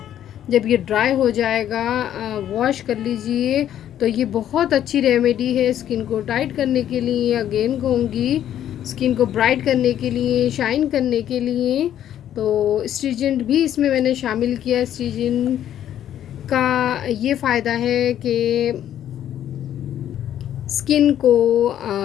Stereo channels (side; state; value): right; quieter; 10.9 dB